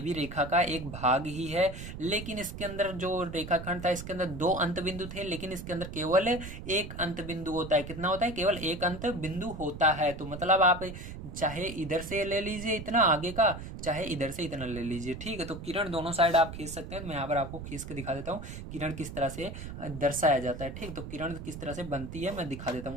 भी रेखा का एक भाग ही है। लेकिन इसके अंदर जो रेखाखंड था इसके अंदर दो अंत बिंदु थे, लेकिन इसके अंदर केवल एक अंत बिंदु होता है। कितना होता है, केवल एक अंत बिंदु होता है। तो मतलब आप चाहे इधर से ले लीजिए इतना आगे का, चाहे इधर से इतना ले लीजिए, ठीक है। तो किरण दोनों साइड आप खींच सकते हैं। मैं यहाँ पर आपको खींच के दिखा देता हूँ किरण किस तरह से दर्शाया जाता है, ठीक। तो किरण किस तरह से बनती है मैं दिखा देता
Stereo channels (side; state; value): right; noise; rumble, 10 dB below the sound